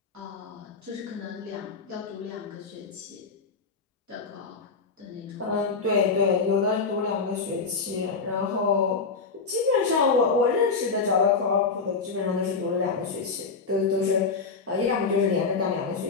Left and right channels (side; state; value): right; quieter; 4.7 dB